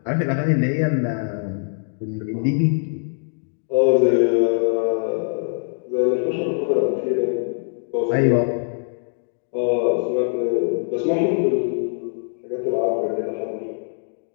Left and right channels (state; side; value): silent; right; digital silence